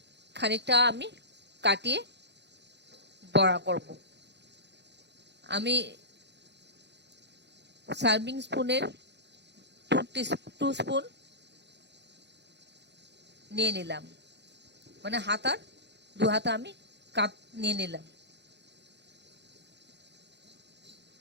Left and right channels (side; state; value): left; late; 0.50 ms